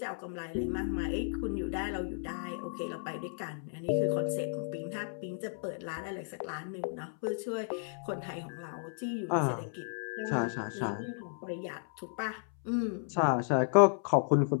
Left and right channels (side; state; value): right; silent; 55 dB below the other